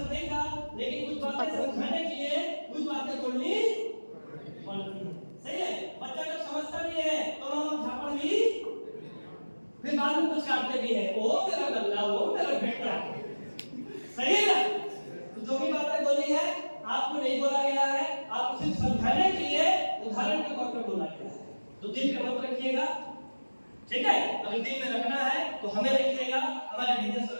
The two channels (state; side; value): inverted; both; correlation -1.00